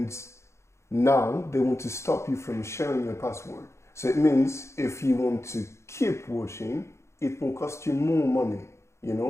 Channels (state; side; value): late; right; 0.13 ms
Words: now they want to stop you from sharing your password. So it means if you want to keep watching, it will cost you more money, you